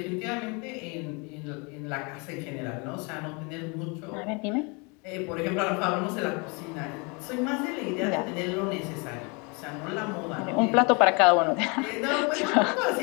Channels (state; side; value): quieter; right; 30.9 dB